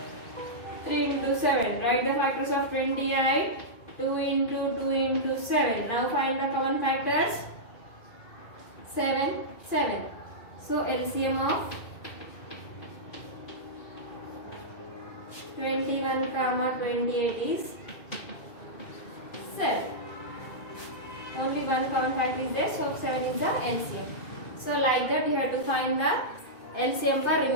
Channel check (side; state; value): right; late; 2.4 ms